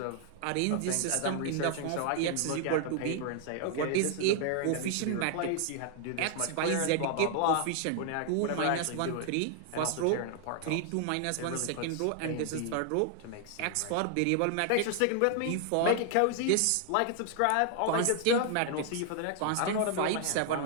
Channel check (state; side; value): different; both; correlation 0.00